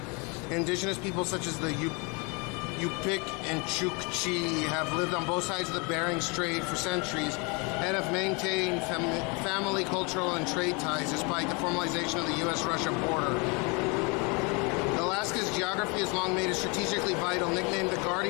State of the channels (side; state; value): right; quieter; 30.7 dB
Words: Indigenous people such as the Yupik and Chukchi have lived on both sides of the Bering Strait for centuries and have maintained family, cultural, and trade ties despite the formalization of the U.S.-Russia border. Alaska's geography has long made it strategically vital. Nicknamed the